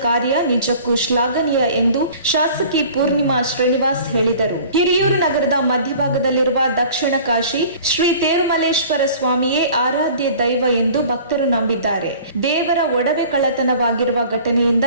ಕಾರ್ಯ ನಿಜಕ್ಕೂ ಶ್ಲಾಘನೀಯ ಎಂದು ಶಾಸಕಿ ಪೂರ್ಣಿಮಾ ಶ್ರೀನಿವಾಸ್ ಹೇಳಿದರು. ಹಿರಿಯೂರು ನಗರದ ಮಧ್ಯಭಾಗದಲ್ಲಿರುವ ದಕ್ಷಿಣ ಕಾಶಿ ಶ್ರೀ ತೇರುಮಲ್ಲೇಶ್ವರ ಸ್ವಾಮಿಯೇ ಆರಾಧ್ಯ ದೈವ ಎಂದು ಭಕ್ತರು ನಂಬಿದ್ದಾರೆ. ದೇವರ ಒಡವೆ ಕಳ್ಳತನವಾಗಿರುವ ಘಟನೆಯಿಂದ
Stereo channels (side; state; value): both; inverted; correlation -0.47